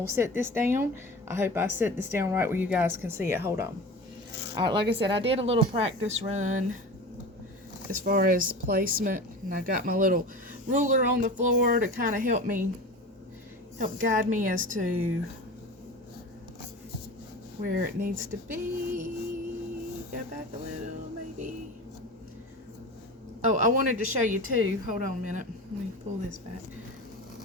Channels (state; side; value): normal; both; correlation 0.32